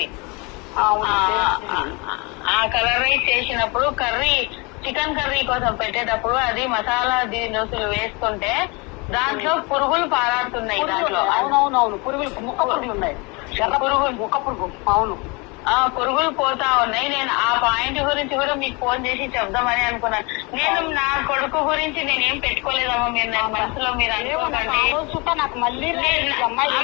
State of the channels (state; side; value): quieter; right; 28.6 dB